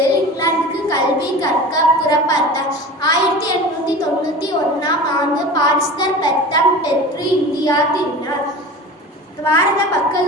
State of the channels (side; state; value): both; normal; correlation 0.34